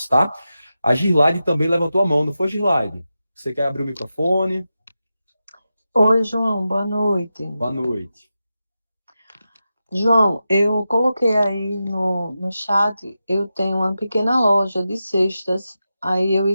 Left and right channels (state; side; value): inverted; both; correlation -0.91